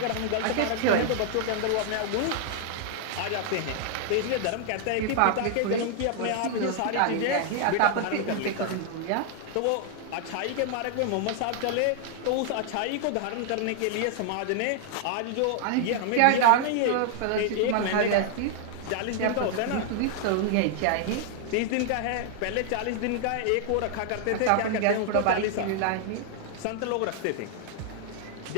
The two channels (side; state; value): both; different; correlation 0.00